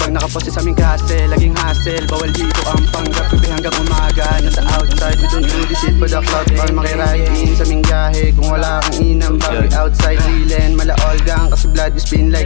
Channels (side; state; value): right; silent; digital silence